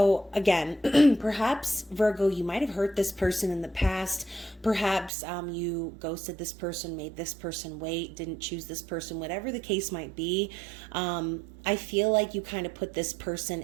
again, perhaps Virgo, you might have hurt this person in the past. Perhaps you ghosted this person, made this person wait, didn't choose this person, whatever the case might be. I feel like you kind of put this person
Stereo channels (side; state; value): left; drops out; at 5.1 s